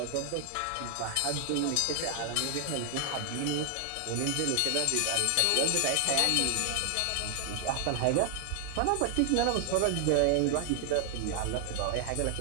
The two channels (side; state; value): both; different; correlation 0.00